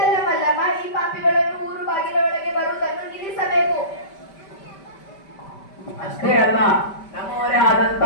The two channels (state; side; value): late; right; 5.1 ms